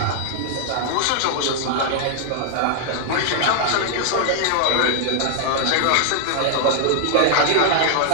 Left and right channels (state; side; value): different; both; correlation 0.00